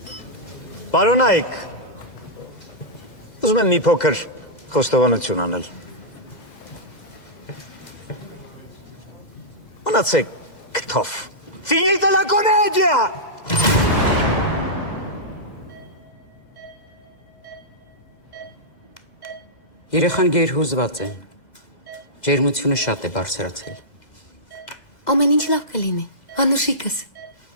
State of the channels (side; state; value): right; late; 2.0 ms